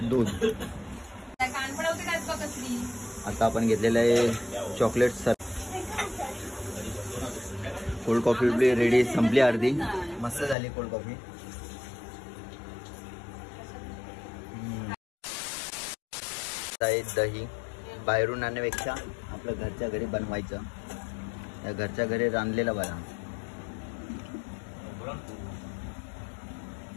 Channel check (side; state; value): right; drops out; at 10.6 s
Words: दूध. आता आपण घेतलेलं आहे chocolate sir. Cold coffee ready, संपली अर्धी. मस्त झाली कोल्ड कॉफी. दही बाहेरून आणण्यापेक्षा आपलं घरच्या घरी बनवायचं. या घरच्या घरी रांधलेला बरा.